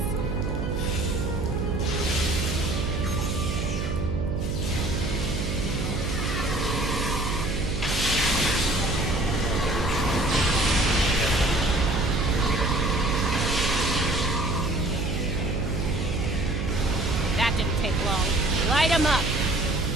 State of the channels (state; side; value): noise; right; hum, 2 dB below the sound